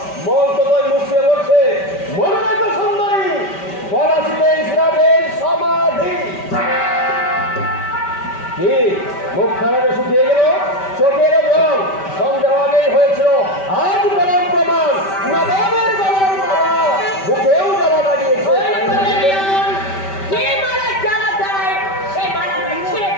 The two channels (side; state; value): right; late; 5.2 ms